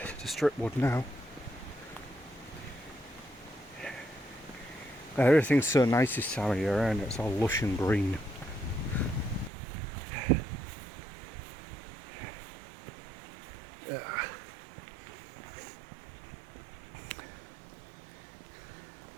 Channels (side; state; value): left; drops out; at 9.5 s